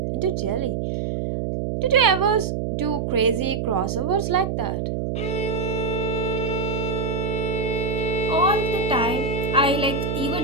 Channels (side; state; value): right; noise; hum, 1 dB below the sound